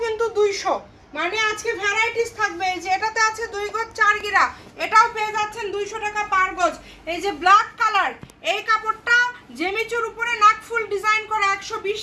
কিন্তু 200, মানে আজকে ভ্যারাইটিস থাকবে। এই যে এটাতে আছে 2 গজ 4 গিরা, এটাও পেয়ে যাচ্ছেন 200 টাকা পার গজ। এই যে ব্ল্যাক কালার, এই কাপড়টা জেমিচুর উপরে নাকফুল ডিজাইন করা, 120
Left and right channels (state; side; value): identical; both; correlation 1.00